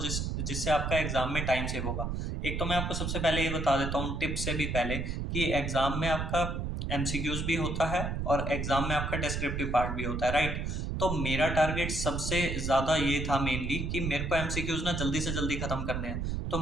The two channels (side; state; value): right; noise; rumble, 2 dB below the sound